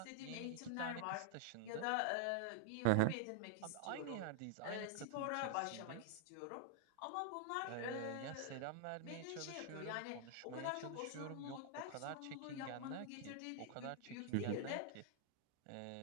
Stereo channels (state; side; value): different; both; correlation 0.00